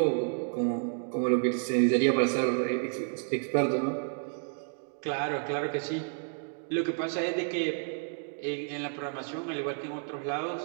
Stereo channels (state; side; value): silent; left; 57 dB below the other